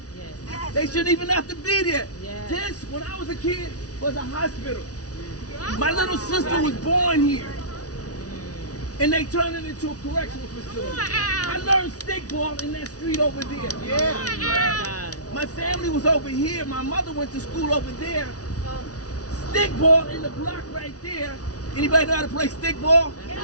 Yes. They shouldn't even have to be there. Yes. This, when I was a kid, was a hospital. My little sister was born here. And they turned it into a correctional facility. I learned stickball in that street over there. My family was over here. My mother went to school over there. Stickball in the block right there. Anybody know how to play stickball?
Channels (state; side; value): late; right; 0.68 ms